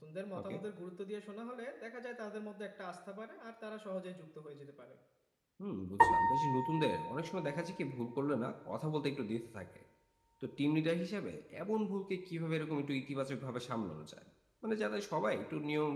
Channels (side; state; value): both; identical; correlation 1.00